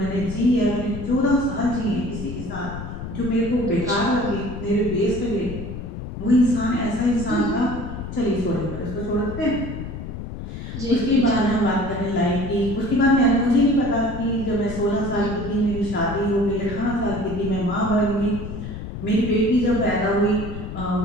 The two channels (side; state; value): left; noise; rumble, 8 dB below the sound